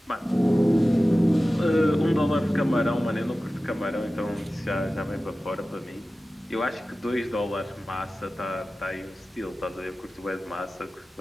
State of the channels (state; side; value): normal; both; correlation 0.95